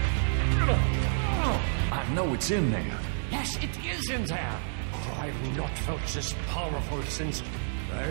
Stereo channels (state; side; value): silent; left; digital silence